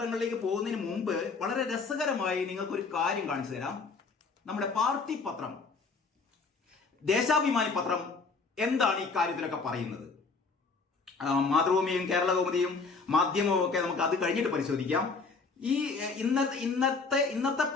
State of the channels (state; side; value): quieter; right; 4.4 dB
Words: പോകുന്നതിന് മുമ്പ് വളരെ രസകരമായി നിങ്ങൾക്കൊരു കാര്യം കാണിച്ചു തരാം. നമ്മുടെ പാർട്ടി പത്രം ദേശാഭിമാനി പത്രം എന്താണ് ഈ കാര്യത്തിലൊക്കെ പറയുന്നത്? മാതൃഭൂമിയും കേരള കൗമുദിയും മാധ്യമവും ഒക്കെ നമുക്ക് അത് കഴിഞ്ഞിട്ട് പരിശോധിക്കാം. ഈ ഇന്നത്തെ